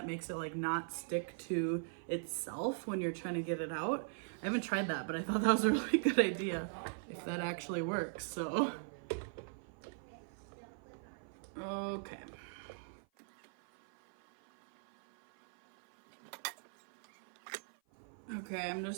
makes it like not stick to itself when you're trying to get it out. I haven't tried that, but I thought that was a really good idea if that actually works. So, okay. Okay, I'm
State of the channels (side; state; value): left; silent; 51 dB below the other